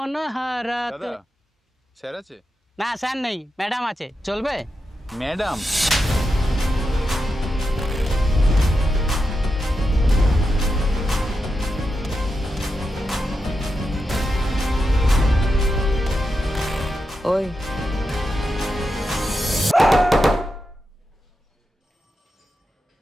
হারাতে। দাদা স্যার আছে? না স্যার নেই, ম্যাডাম আছে, চলবে? ম্যাডাম ওই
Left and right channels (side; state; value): both; normal; correlation 0.88